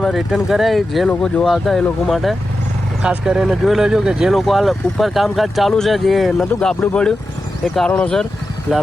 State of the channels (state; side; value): normal; both; correlation 0.91